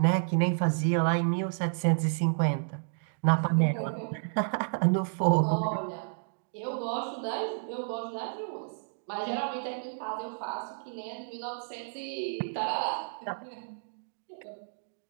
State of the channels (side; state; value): left; silent; digital silence